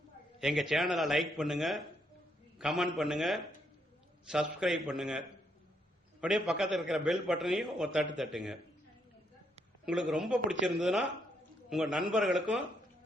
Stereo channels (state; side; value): normal; both; correlation 0.75